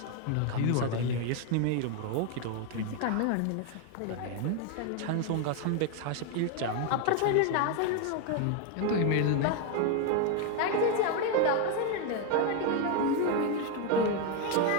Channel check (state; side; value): different; both; correlation 0.01